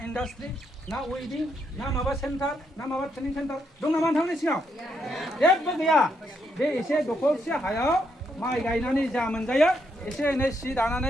इन्डास्ट्रि ना वेडिं ना माबा सेन्टार ना माबा ट्रेनिं सेन्टार दं नामा नोंथांमोननि सिङाव जेबो गैया बे एसे दखरसे हायाव माइ गायनानै जा मोनजायो एसे एनै सि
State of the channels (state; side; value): normal; both; correlation 0.77